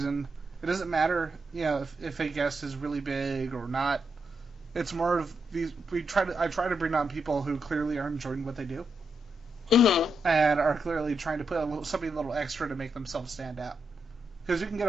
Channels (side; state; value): both; normal; correlation 0.83